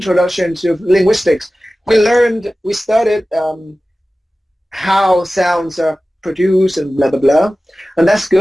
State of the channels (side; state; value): both; normal; correlation 0.96